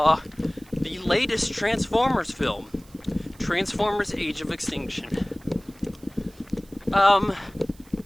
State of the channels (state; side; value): noise; right; hiss, 26 dB below the sound